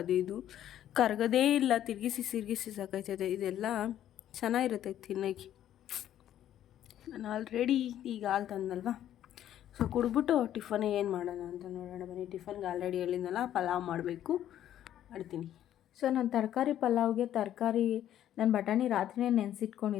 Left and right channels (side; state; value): right; quieter; 11.5 dB